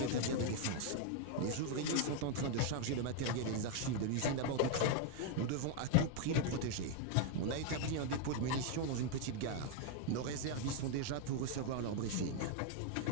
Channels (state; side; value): different; both; correlation 0.00